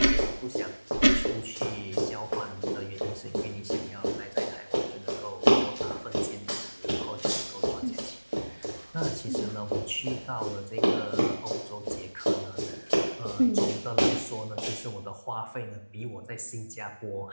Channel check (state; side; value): inverted; both; correlation -1.00